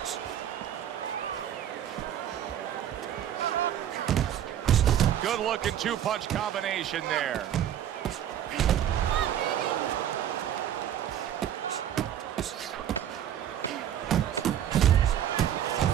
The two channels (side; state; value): left; quieter; 10.4 dB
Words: Good looking two-punch combination there.